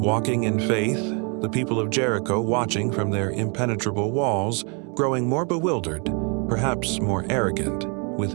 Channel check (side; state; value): left; quieter; 35.5 dB